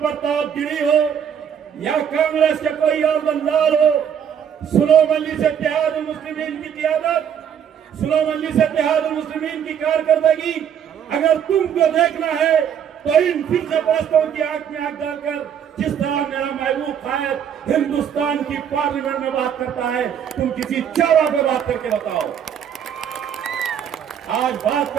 गिरी हो या कांग्रेस के कोई और दलाल हो, सुनो मजलिस इत्तेहादुल मुस्लिमीन की क़ियादत, सुनो मजलिस इत्तेहादुल मुस्लिमीन की कारकर्दगी, अगर तुमको देखना है तो इन फिरके परस्तों की आंख में आंख डालकर, जिस तरह मेरा महबूब कायद हिंदुस्तान की पार्लियामेंट में बात करता है, तुम किसी चारा पे बात करके बताओ। आज बात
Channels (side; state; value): left; quieter; 8.5 dB